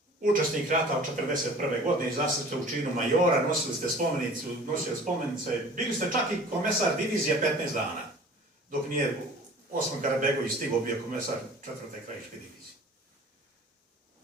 učesnik rata od 1941. godine, izašli ste u činu majora, nosili ste spomenice, bili ste čak i komesar divizije 15 dana, dok nije Osman Karabegović stigao, bio komesar 4. krajiške divizije.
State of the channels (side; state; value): both; normal; correlation 0.46